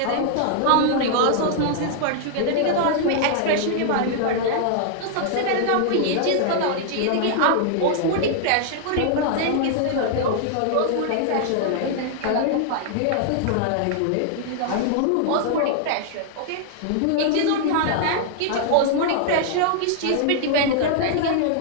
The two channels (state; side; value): different; both; correlation -0.01